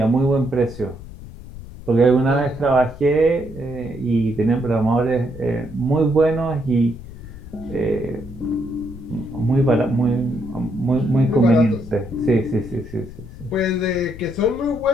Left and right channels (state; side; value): noise; left; rumble, 15 dB below the sound